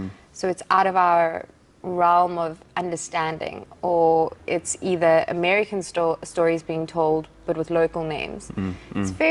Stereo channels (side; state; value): both; identical; correlation 1.00